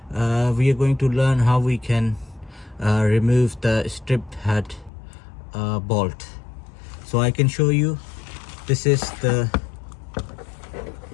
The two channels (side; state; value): right; drops out; at 4.9 s